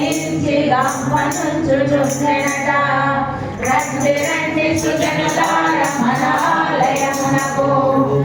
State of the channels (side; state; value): both; identical; correlation 1.00